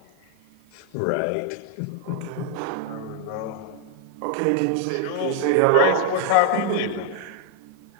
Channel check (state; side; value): different; both; correlation 0.00